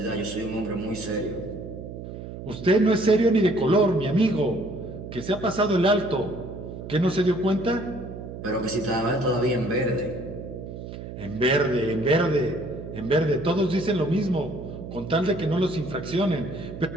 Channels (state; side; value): noise; right; hum, 10 dB below the sound